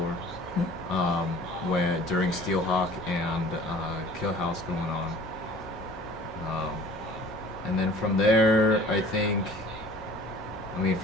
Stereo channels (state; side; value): normal; both; correlation 0.47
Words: when during Steelhawk and Kill House going on. And then from there,